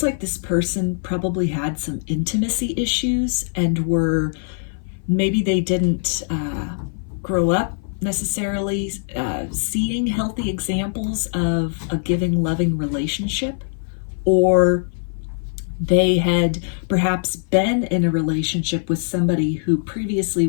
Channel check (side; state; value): right; silent; 57 dB below the other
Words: like this person probably had some intimacy issues and maybe they didn't grow up necessarily seeing healthy examples of a giving, loving relationship, or they had perhaps been in a relationship with somebody who previously